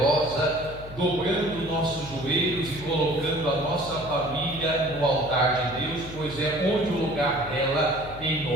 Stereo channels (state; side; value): noise; left; hum, 14 dB below the sound